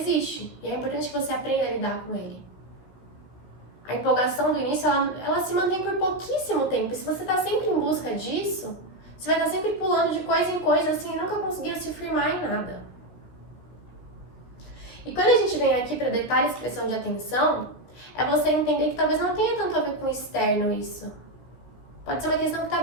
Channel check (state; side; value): late; right; 16 ms